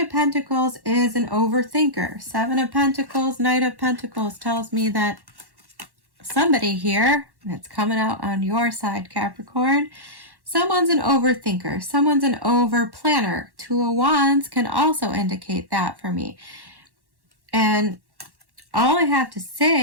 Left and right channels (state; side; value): late; left; 1.1 ms